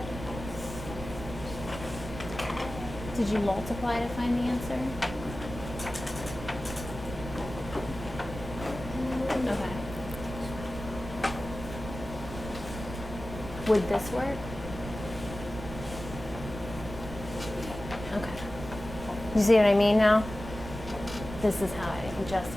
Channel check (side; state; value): right; noise; rumble, 10 dB below the sound